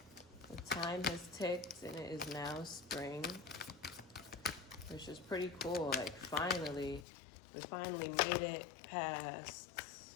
The time has ticked and it is now spring, which is pretty cool. Like finally, we finally made it past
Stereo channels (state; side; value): drops out; right; at 7.1 s